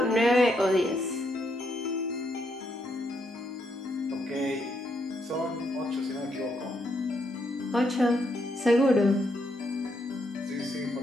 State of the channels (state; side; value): normal; both; correlation 0.77